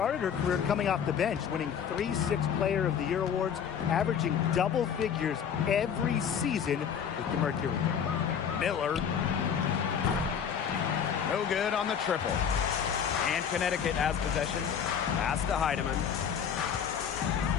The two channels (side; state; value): right; quieter; 7.8 dB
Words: her career coming off the bench, winning 3 Sixth Player of the Year awards, averaging double figures every season with the Mercury. Miller. No good on the triple. And Connecticut has possession. Pass to Heidemann.